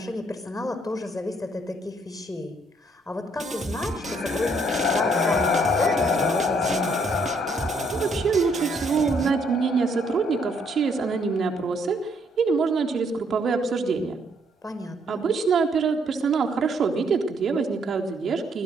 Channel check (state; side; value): normal; both; correlation 0.69